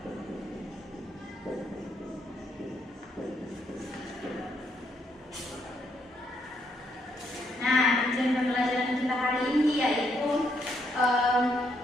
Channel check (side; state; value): both; normal; correlation 0.75